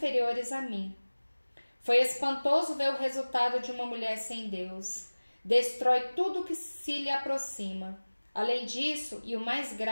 a mim. Foi espantoso ver o resultado de uma mulher sem Deus. Destrói tudo que se lhe aproxima. Além disso, e o mais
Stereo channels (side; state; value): both; inverted; correlation -1.00